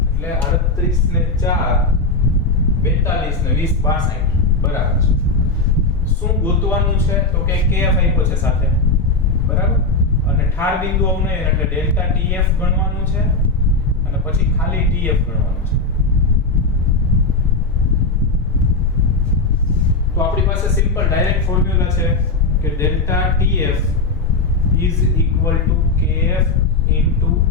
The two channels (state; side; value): quieter; right; 3.4 dB